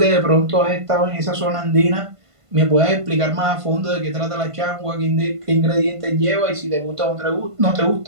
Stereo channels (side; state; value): left; late; 1.5 ms